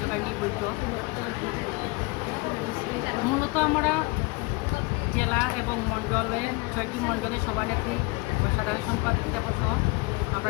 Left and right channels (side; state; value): right; quieter; 25.5 dB